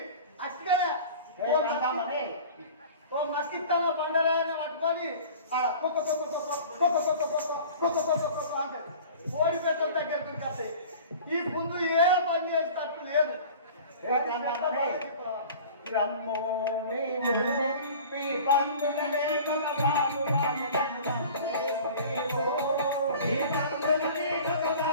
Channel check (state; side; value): inverted; both; correlation -0.42